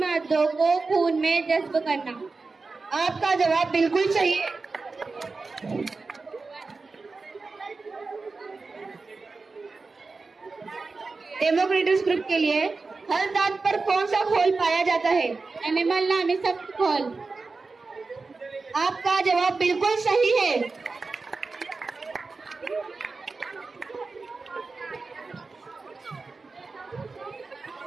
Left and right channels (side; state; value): left; quieter; 4.0 dB